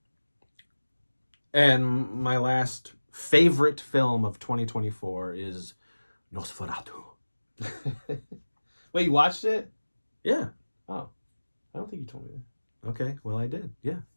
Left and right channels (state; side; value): inverted; both; correlation -1.00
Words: And my last favorite film of 2024 is Nosferatu. Wait, you watched it? Yeah. Oh, I don't think you told me that. Okay. Well, I did. Yeah.